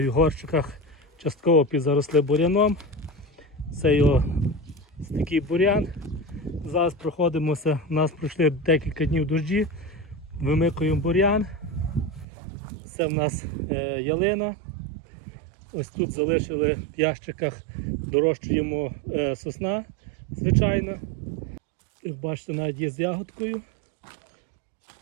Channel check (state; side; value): drops out; left; at 12.2 s